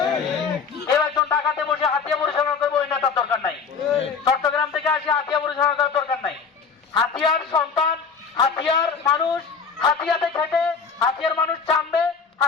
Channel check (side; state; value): right; quieter; 5.7 dB